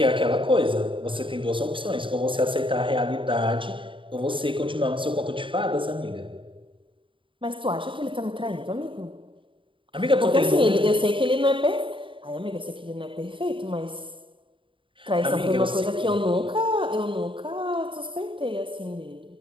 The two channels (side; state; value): left; late; 0.25 ms